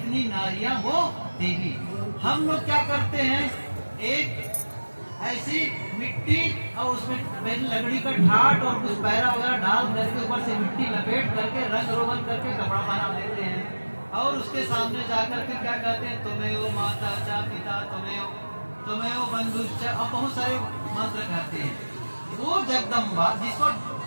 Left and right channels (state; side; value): inverted; both; correlation -1.00